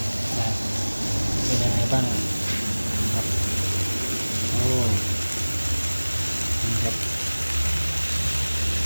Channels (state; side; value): inverted; both; correlation -1.00